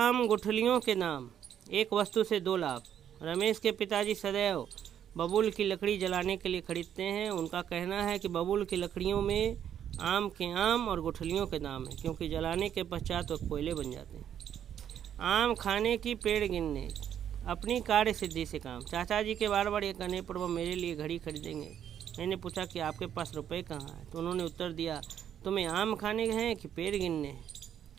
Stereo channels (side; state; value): left; quieter; 9.6 dB